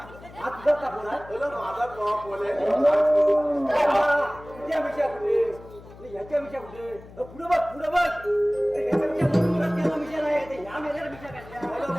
तुझा का पोल आहे बोला माझा पोल आहे तुझ्या विषया कुठे याच्या विषय कुठे पुढे बघ याच्या विषय नाही या मेल्याला विषय काय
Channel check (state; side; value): noise; left; hum, 19 dB below the sound